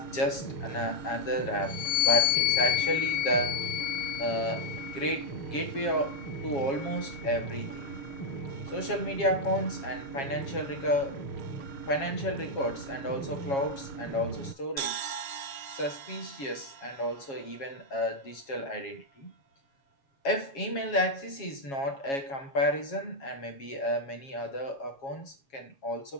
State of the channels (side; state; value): right; late; 7.3 ms